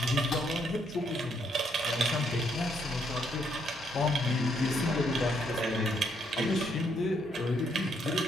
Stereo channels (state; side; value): normal; both; correlation 0.72